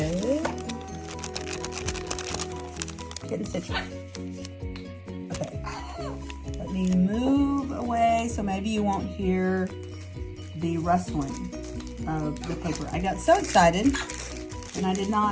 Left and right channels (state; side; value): identical; both; correlation 1.00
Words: getting stitched. Okay, let me move away so maybe you won't hear the rustling of the paper. I got so excited and I did